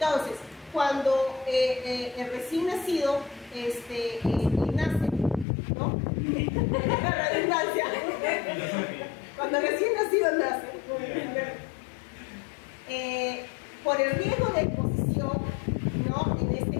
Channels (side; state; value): right; drops out; at 5.5 s